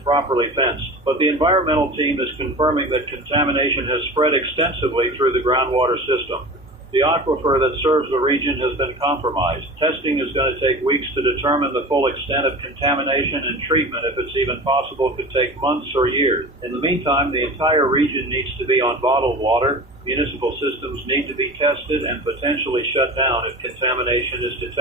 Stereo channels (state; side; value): normal; both; correlation 0.34